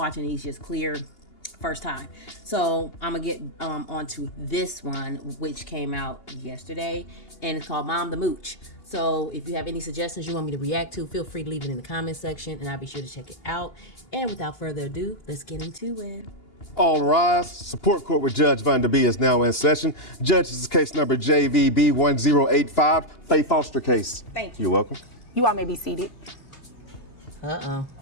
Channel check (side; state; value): right; late; 2.8 ms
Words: these just clear first time. So I'm gonna get onto this one, which came out yesterday, and it's called Mom the Mooch. So if you have any suggestions you want me to react to, feel free to leave it in the comment section, and I'll be sure to check it out. And without further ado, let's get into it. All rise. Support court with Judge Vonda B is now in session. Judge, this is case number JVB 1085, Faye Foster case. Thank you. You're welcome. You all may be seated. Uh-oh.